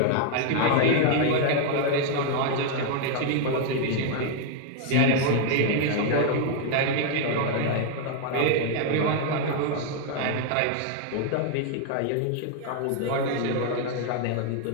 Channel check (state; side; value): different; both; correlation 0.00